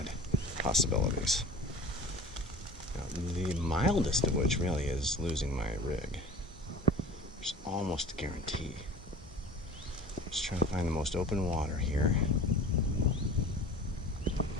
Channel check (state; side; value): normal; both; correlation 0.41